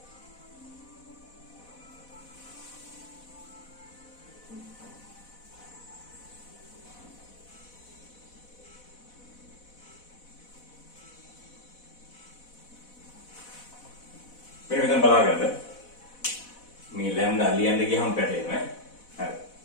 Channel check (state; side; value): late; right; 4.1 ms